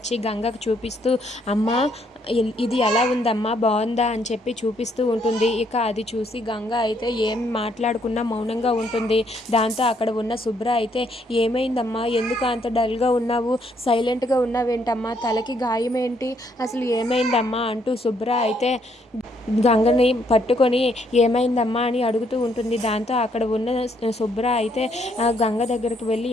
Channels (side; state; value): both; normal; correlation 0.70